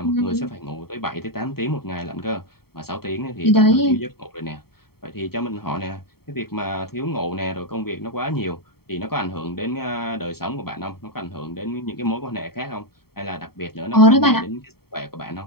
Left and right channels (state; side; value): late; right; 0.95 ms